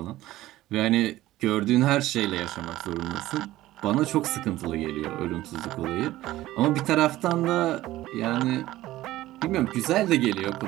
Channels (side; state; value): left; quieter; 15.8 dB